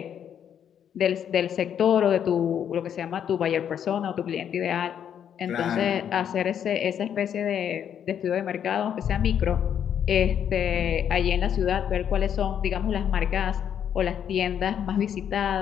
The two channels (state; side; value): quieter; right; 8.9 dB